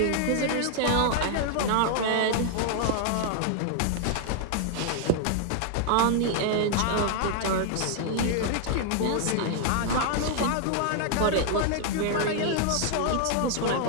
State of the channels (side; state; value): both; different; correlation 0.00